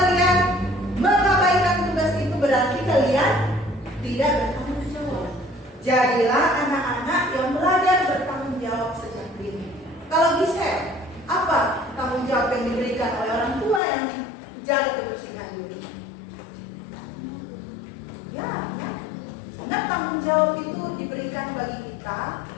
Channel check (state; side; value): drops out; right; at 13.8 s